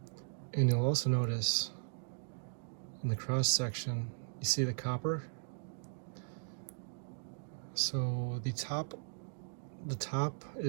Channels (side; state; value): left; silent; digital silence